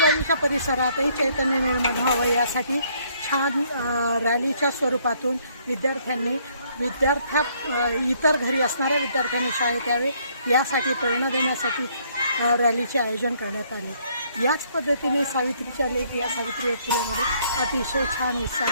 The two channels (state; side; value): inverted; both; correlation -0.66